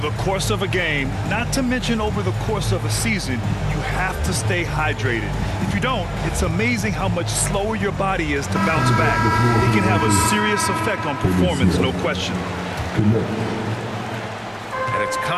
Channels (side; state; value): both; identical; correlation 1.00